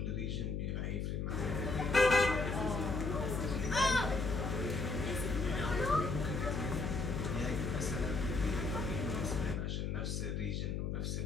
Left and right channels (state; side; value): noise; left; hum, 1 dB below the sound